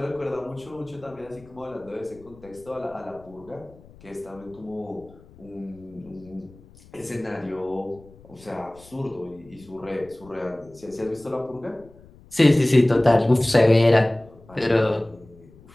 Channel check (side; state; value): left; noise; rumble, 24 dB below the sound